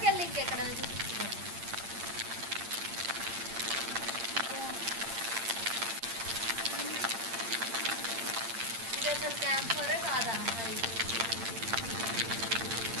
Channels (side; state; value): left; late; 8.7 ms